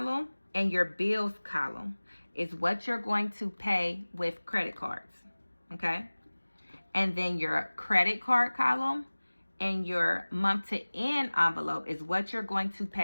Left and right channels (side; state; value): both; inverted; correlation -1.00